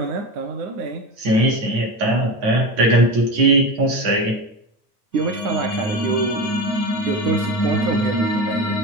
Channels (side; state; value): left; late; 9.4 ms